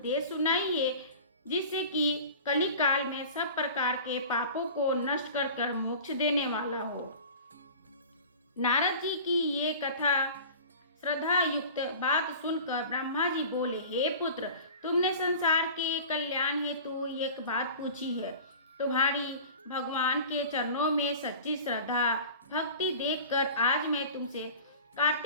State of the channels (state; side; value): inverted; both; correlation -0.38